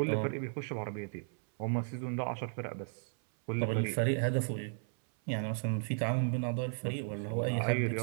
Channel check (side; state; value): left; silent; 55 dB below the other